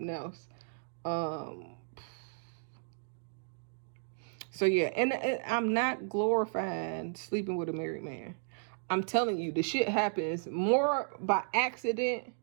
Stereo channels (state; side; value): silent; left; digital silence